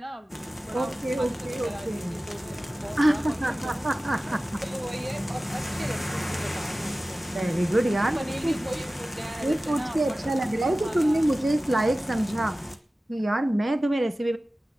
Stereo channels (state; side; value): normal; both; correlation 0.96